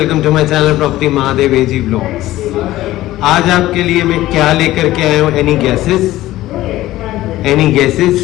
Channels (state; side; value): quieter; right; 15.8 dB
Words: to my channel property Mahadev AG blogs. आज आपके लिए मैं क्या लेकर के आया हूँ? Any guesses?